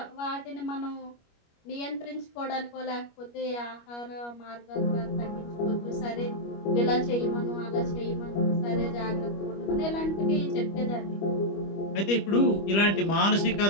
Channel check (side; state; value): right; late; 25 ms